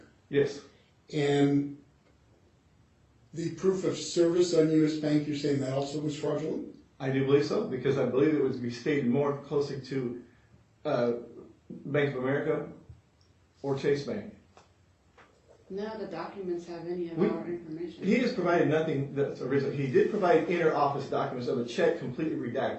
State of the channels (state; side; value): identical; both; correlation 1.00